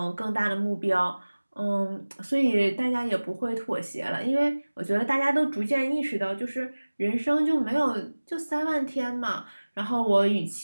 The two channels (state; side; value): inverted; both; correlation -1.00